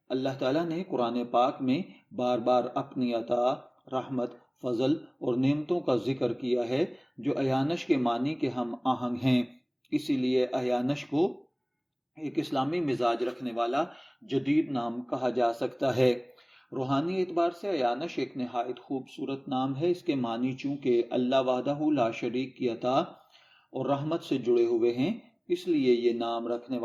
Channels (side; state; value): both; identical; correlation 1.00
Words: اللہ تعالیٰ نے قرآن پاک میں بار بار اپنی عطا، رحمت، فضل اور نعمتوں کا ذکر کیا ہے جو ایانش کے معنی کے ہم آہنگ ہیں۔ اسی لیے ایانش کو ایک اسلامی مزاج رکھنے والا جدید نام کہا جا سکتا ہے۔ روحانی اعتبار سے ایانش ایک نہایت خوبصورت نام ہے۔ اس کے معنی چونکہ اللہ وحدہ لا شریک کی عطا اور رحمت سے جڑے ہوئے ہیں، اس لیے یہ نام رکھنے